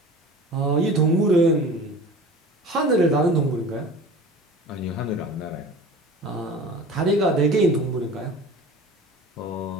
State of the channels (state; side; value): normal; both; correlation 0.39